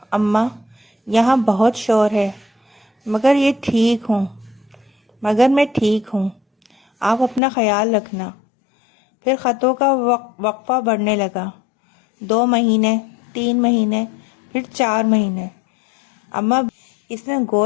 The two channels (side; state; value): right; drops out; at 7.4 s